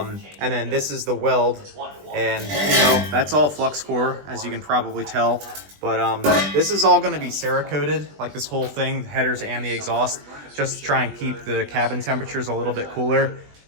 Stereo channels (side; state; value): left; late; 20 ms